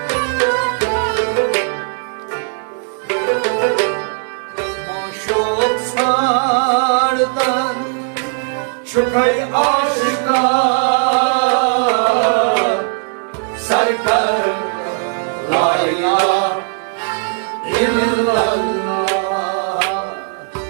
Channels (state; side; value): silent; left; 58 dB below the other